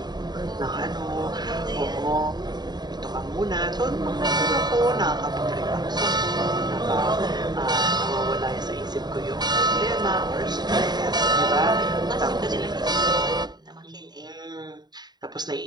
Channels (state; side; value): late; left; 0.20 ms